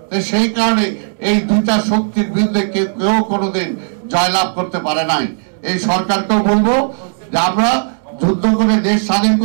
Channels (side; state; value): left; silent; 70 dB below the other